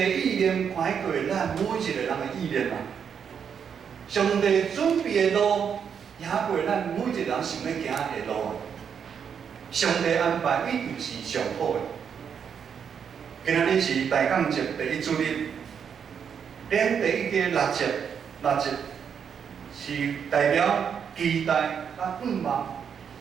意念看过咱每一个人的意念啊。上帝准备的路，行过咱每一个人想要行的路啊。上帝安排一定是上好的。今仔日是大港节第一主日。咱第一个六节是代表期待甲盼望，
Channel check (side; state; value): left; quieter; 7.3 dB